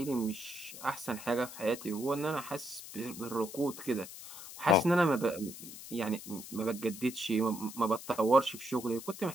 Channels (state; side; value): noise; left; hiss, 13 dB below the sound